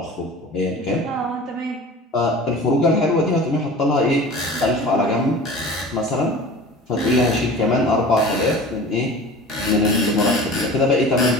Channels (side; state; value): both; normal; correlation 0.39